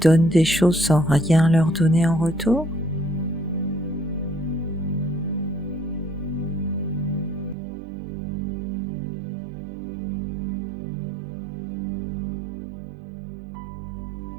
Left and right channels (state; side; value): drops out; left; at 7.6 s